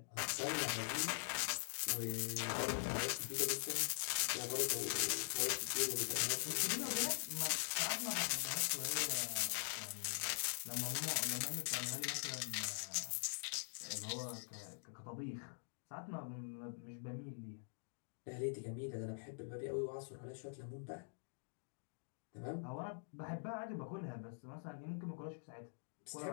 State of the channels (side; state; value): right; silent; digital silence